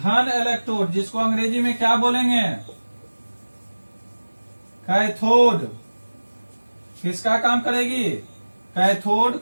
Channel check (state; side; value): inverted; both; correlation -1.00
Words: इलेक्ट्रोड, जिसको अंग्रेजी में क्या बोलेंगे? कैथोड। किसका काम करेगी? कैथोड